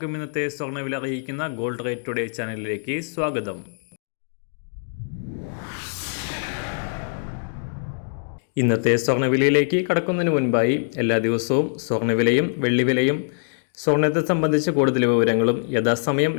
ഇന്നത്തെ സ്വർണ്ണവില അറിയിക്കുന്ന ഗോൾഡ് റേറ്റ് ടുഡേ ചാനലിലേക്ക് സ്വാഗതം. ഇന്നത്തെ സ്വർണ്ണവിലയിലേക്ക് കടക്കുന്നതിന് മുൻപായി എല്ലാ ദിവസവും സ്വർണ്ണവിലയും വെള്ളിവിലയും സ്വർണ്ണത്തെ സംബന്ധിച്ച് കൂടുതൽ വിവരങ്ങളും യഥാസമയം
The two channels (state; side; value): silent; right; digital silence